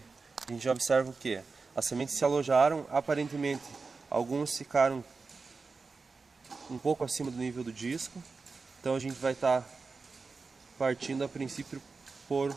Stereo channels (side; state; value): left; quieter; 4.3 dB